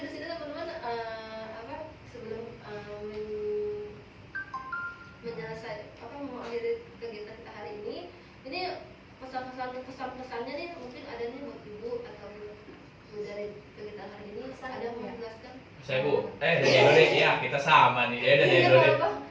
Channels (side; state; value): both; identical; correlation 1.00